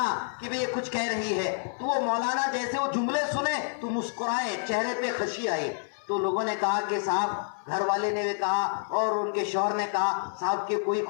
कि भाई ये कुछ कह रही है, तो वो मौलाना जैसे वो जुमले सुने तो मुस्कुराए, चेहरे पे खुशी आई। तो लोगों ने कहा कि साहब, घर वाले ने भी कहा और उनके शौहर ने कहा, साहब की कोई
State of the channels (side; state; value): right; silent; 59 dB below the other